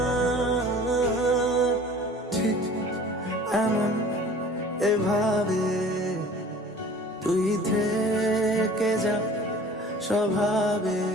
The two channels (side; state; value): both; normal; correlation 0.46